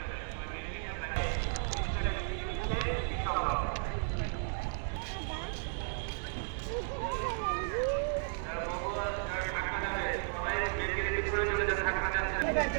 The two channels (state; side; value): silent; left; digital silence